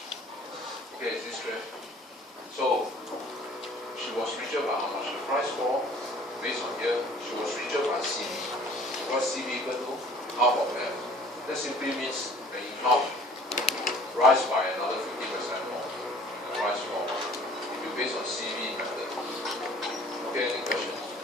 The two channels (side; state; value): both; normal; correlation 0.51